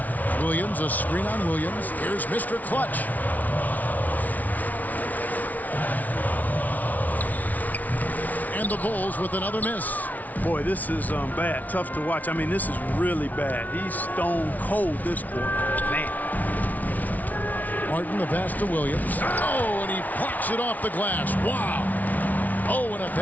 Williams, a screen on Williams. Here's Mr. Clutch. And the Bulls with another miss. Boy, this is bad. Tough to watch. I mean, this is really bad. He's stone cold this quarter. Man. Martin, the pass to Williams. Oh, and he plucks it off the glass. Wow. Oh, and a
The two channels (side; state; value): right; late; 0.075 ms